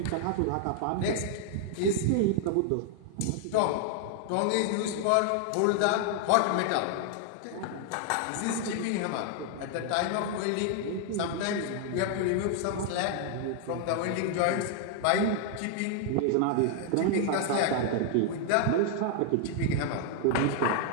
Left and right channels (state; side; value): different; both; correlation 0.00